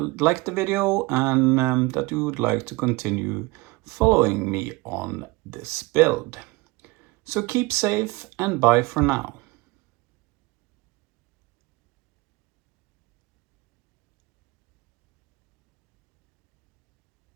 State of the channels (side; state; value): left; quieter; 23.6 dB